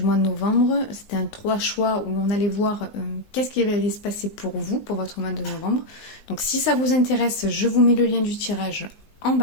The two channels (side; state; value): right; late; 19 ms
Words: mois de novembre. C'était un 3 choix où on allait voir qu'est-ce qui allait se passer pour vous, pour votre mois de novembre. Donc si ça vous intéresse, je vous mets le lien du tirage en